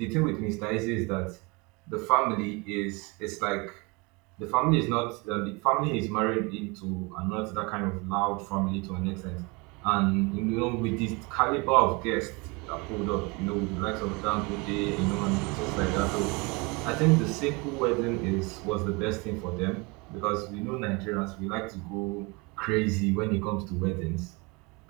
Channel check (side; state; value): left; quieter; 27.8 dB